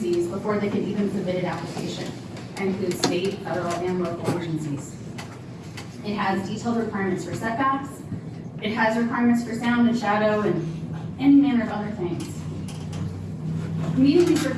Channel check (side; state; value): both; identical; correlation 1.00